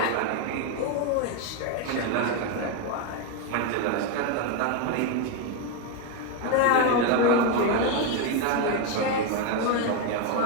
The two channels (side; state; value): both; different; correlation 0.02